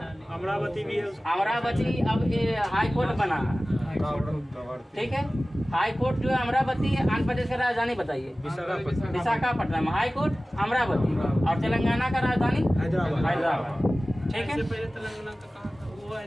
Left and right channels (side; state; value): both; normal; correlation 0.97